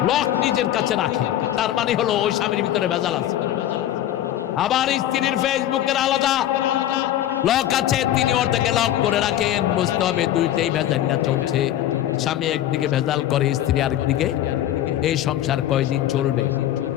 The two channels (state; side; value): quieter; right; 12.4 dB